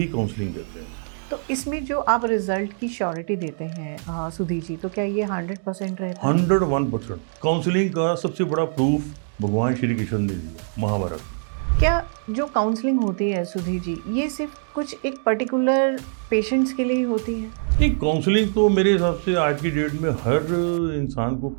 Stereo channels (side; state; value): left; silent; digital silence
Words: काउंसलिंग कहते हैं। तो इसमें जो आप रिजल्ट की श्योरिटी देते हैं सुधीर जी, तो क्या ये 100% रहता है? 101% काउंसलिंग का सबसे बड़ा प्रूफ भगवान श्री कृष्ण ने दिया महाभारत में। क्या जो काउंसलिंग होती है सुधीर जी, ये सिर्फ कुछ एक पर्टिकुलर पेशेंट्स के लिए ही होती है? नहीं, काउंसलिंग तो मेरे हिसाब से आज की डेट में हर इंसान को